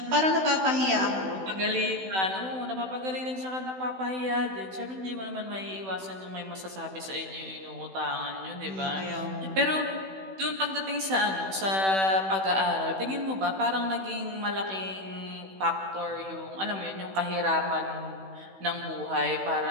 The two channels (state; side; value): late; left; 16 ms